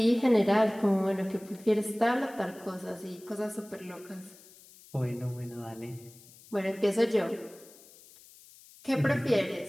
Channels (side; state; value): left; noise; hiss, 23 dB below the sound